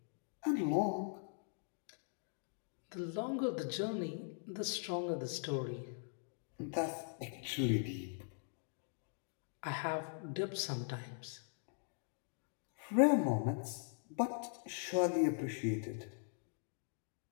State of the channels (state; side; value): silent; right; digital silence